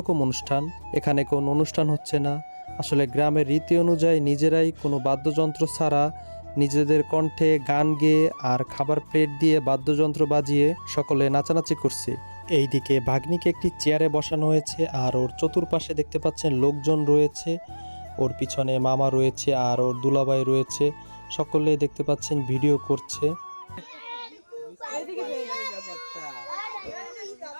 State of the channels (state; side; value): inverted; both; correlation -1.00